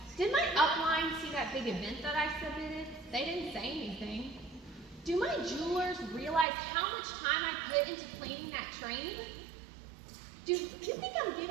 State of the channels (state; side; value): drops out; left; at 6.5 s